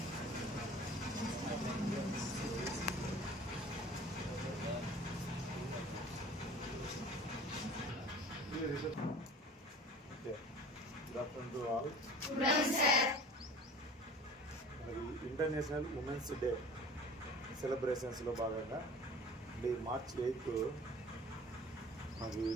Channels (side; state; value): both; normal; correlation 0.42